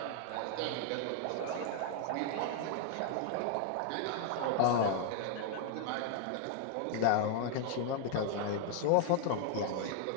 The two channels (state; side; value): different; both; correlation 0.00